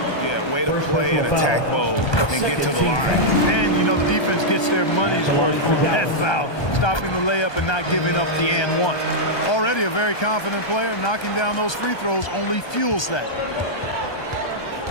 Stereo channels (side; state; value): right; late; 1.2 ms